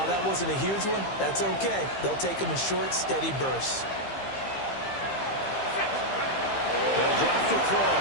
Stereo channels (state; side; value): late; right; 15 ms